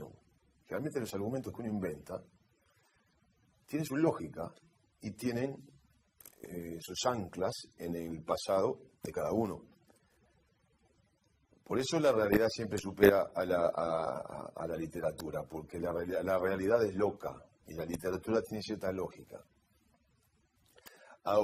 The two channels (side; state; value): both; identical; correlation 1.00